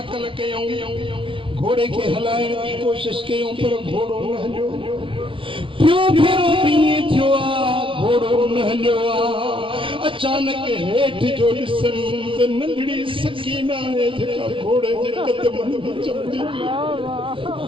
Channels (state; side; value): late; left; 0.25 ms